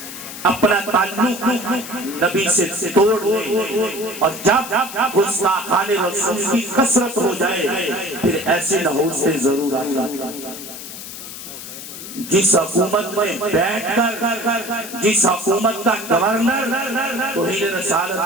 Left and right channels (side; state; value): left; noise; hiss, 11 dB below the sound